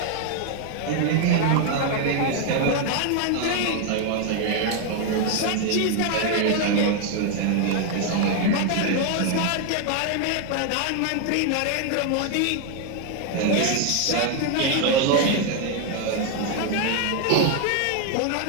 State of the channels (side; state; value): both; different; correlation 0.01